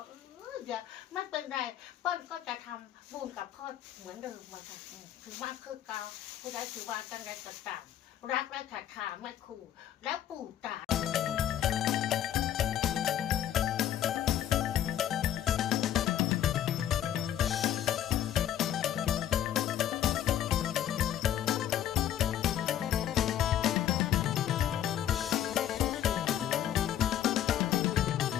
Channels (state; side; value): quieter; right; 11.1 dB